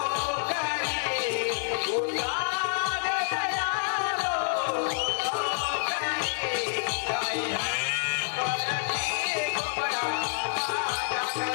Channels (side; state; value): right; silent; digital silence